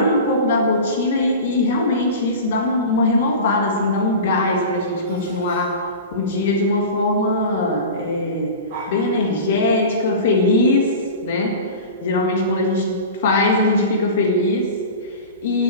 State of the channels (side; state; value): both; inverted; correlation -0.32